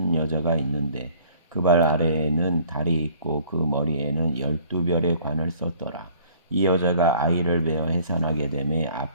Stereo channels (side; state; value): both; inverted; correlation -0.55